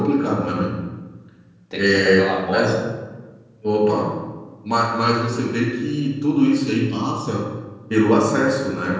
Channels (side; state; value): both; identical; correlation 1.00